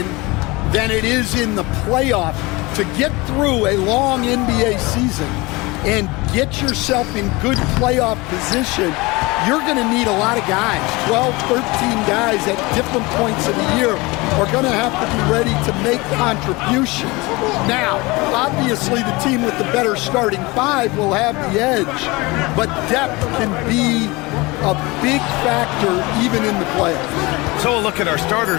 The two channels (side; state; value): right; quieter; 23.6 dB